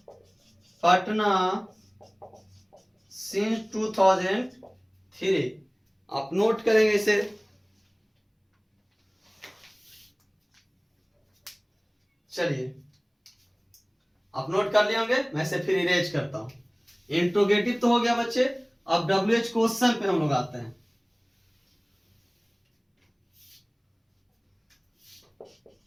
Patna since 2003। आप नोट करेंगे इसे। चलिए आप नोट कर लिए होंगे, मैं इसे फिर इरेज करता हूं। इंट्रोगेटिव तो हो गया बच्चे। अब WH क्वेश्चन पे हम लोग आते हैं।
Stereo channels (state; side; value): identical; both; correlation 1.00